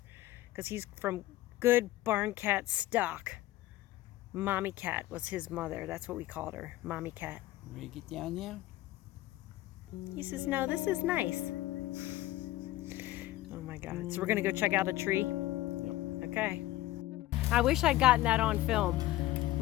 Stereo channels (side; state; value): right; quieter; 16.2 dB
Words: because he's from good barn cat stock. Mommy Cat was his mother. That's what we called her, Mommy Cat. Ready to get down now? He says, no, this is nice. Oh my God. So we're going to go check out a tree? Yep. Okay. I wish I'd gotten that on film.